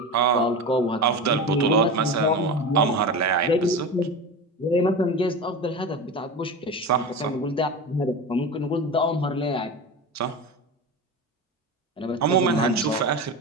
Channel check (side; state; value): both; normal; correlation 0.27